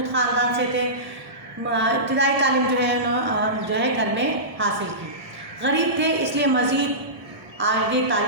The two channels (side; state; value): left; late; 1.7 ms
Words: ख़ानदान से थे। इब्तिदाई तालीम जो है घर में हासिल की। गरीब थे इसलिए मज़ीद आगे